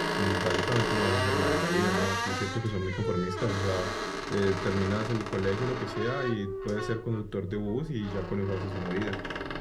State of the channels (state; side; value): identical; both; correlation 1.00